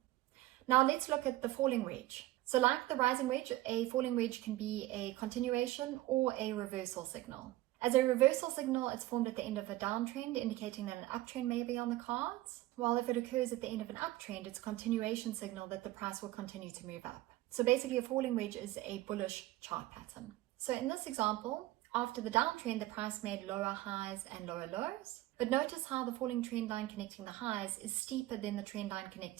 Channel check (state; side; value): quieter; left; 17.0 dB